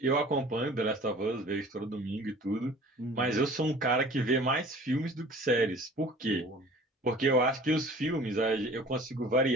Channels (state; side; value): normal; both; correlation 0.46